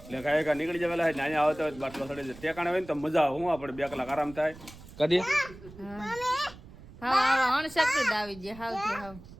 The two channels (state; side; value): noise; right; rumble, 18 dB below the sound